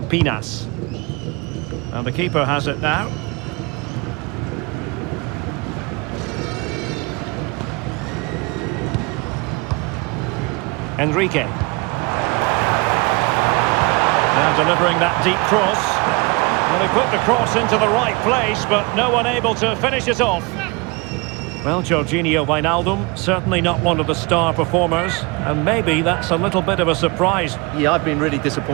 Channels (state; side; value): quieter; left; 27.2 dB